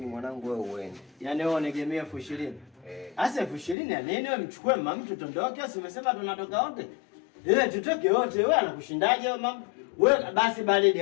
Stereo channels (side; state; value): right; drops out; at 3.8 s